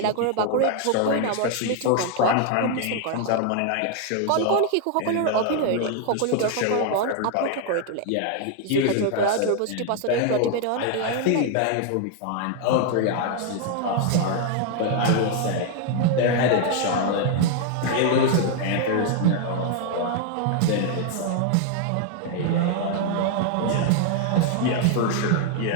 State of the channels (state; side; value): different; both; correlation 0.00